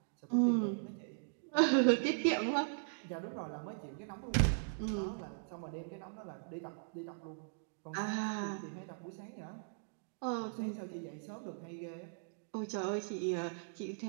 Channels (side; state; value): left; silent; digital silence